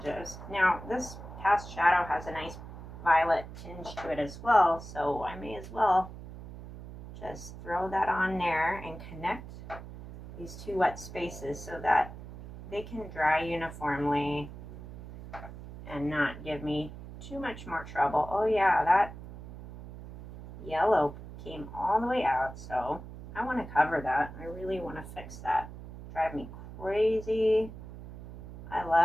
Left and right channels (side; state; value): right; noise; hum, 13 dB below the sound